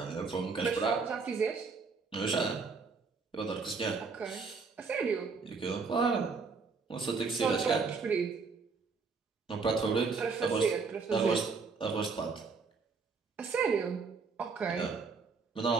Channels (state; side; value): quieter; left; 4.8 dB